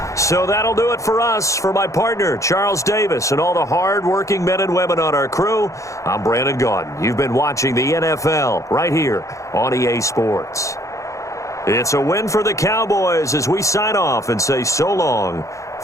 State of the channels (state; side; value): late; right; 0.15 ms